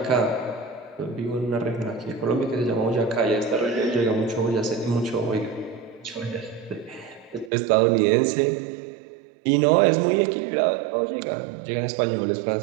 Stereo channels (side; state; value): left; drops out; at 7.5 s